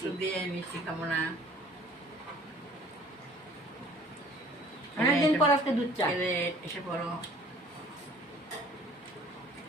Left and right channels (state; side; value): normal; both; correlation 0.53